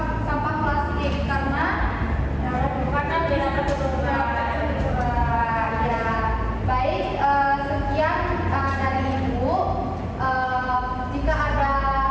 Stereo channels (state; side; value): identical; both; correlation 1.00